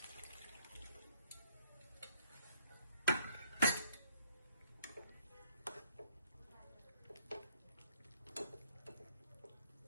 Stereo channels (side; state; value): both; inverted; correlation -0.65